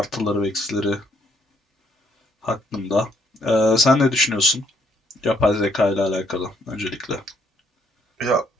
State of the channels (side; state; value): both; normal; correlation 0.68